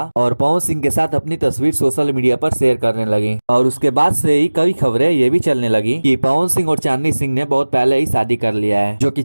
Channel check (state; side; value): inverted; both; correlation -1.00